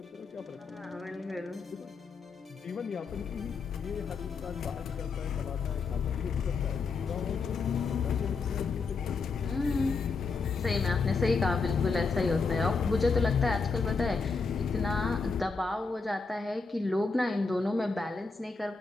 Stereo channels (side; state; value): right; quieter; 4.6 dB